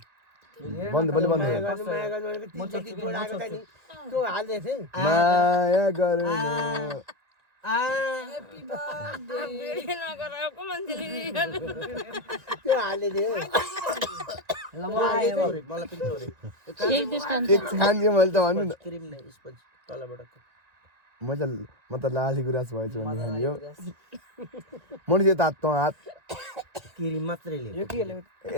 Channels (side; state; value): left; late; 1.9 ms